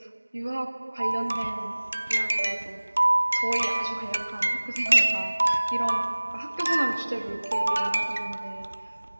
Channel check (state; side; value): inverted; both; correlation -1.00